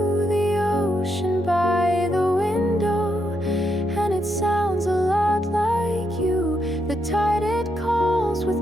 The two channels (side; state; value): both; normal; correlation 0.80